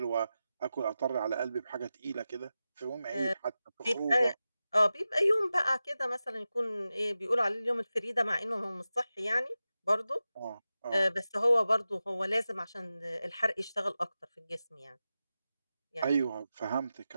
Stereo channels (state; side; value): inverted; both; correlation -0.93